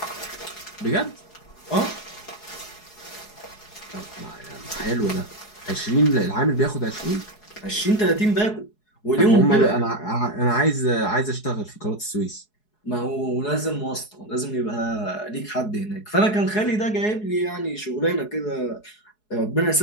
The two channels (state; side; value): late; right; 4.7 ms